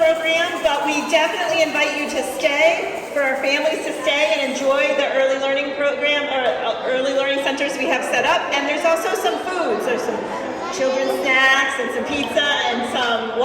but we definitely invite you to stay, for our families to stay and enjoy the early learning program, or early learning centers we have set up. And there's also some foods. There's some children's snacks and some pizza and some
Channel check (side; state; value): both; identical; correlation 1.00